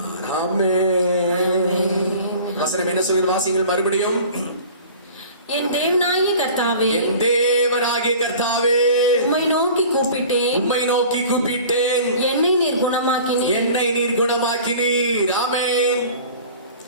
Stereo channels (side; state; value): both; inverted; correlation -0.43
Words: ஆமென். வசனம் என்ன சொல்கிறது? வாசிங்கள் மறுபடியும். என் தேவனாகிய கர்த்தாவே, என் தேவனாகிய கர்த்தாவே, உம்மை நோக்கி கூப்பிட்டேன், உம்மை நோக்கி கூப்பிட்டேன், என்னை நீர் குணமாக்கினீர், என்னை நீர் குணமாக்கினீர். ஆமென்.